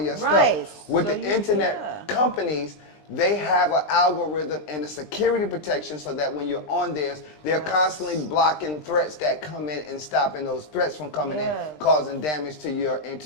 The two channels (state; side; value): late; right; 20 ms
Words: stuff. With the internet companies, they have an algorithm and a security protection so that when you're on theirs, they're constantly blocking threats that come in and stopping those threats from coming in, causing damage to your